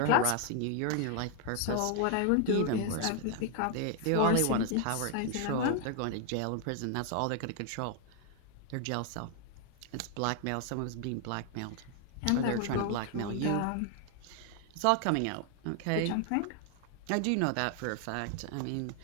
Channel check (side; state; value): both; different; correlation 0.00